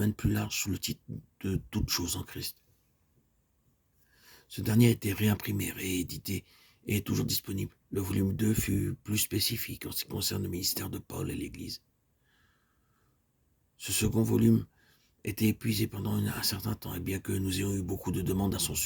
plus large sous le titre de Toutes choses en Christ. Ce dernier a été réimprimé, réédité et est toujours disponible. Le volume 2 fut plus spécifique en ce qui concerne le ministère de Paul et l'Église. Ce second volume était épuisé pendant un certain temps, et bien que nous ayons eu beaucoup de demandes à son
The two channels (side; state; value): both; identical; correlation 1.00